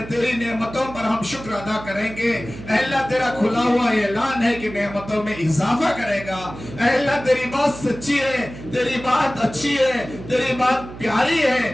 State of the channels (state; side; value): noise; right; hum, 13 dB below the sound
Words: تیری نعمتوں پر ہم شکر ادا کریں گے اے اللہ۔ تیرا کھلا ہوا اعلان ہے کہ نعمتوں میں اضافہ کرے گا اے اللہ۔ تیری بات سچی ہے، تیری بات اچھی ہے، تیری بات پیاری ہے